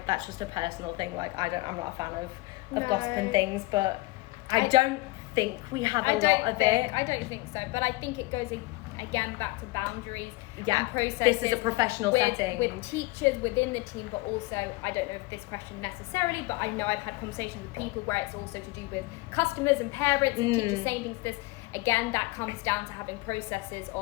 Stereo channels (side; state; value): right; quieter; 22.1 dB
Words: that's just a personal thing. Like, I'm not a fan of gossip and things, but I don't think we have a lot of it. I don't think so, but I think it goes again back to boundaries and processes. This is a professional setting with teachers within the team, but also, I don't know if this question necessarily, but I know I've had conversations with people where it's also to do with customers and parents and teachers saying things. This again, that comes down to having processes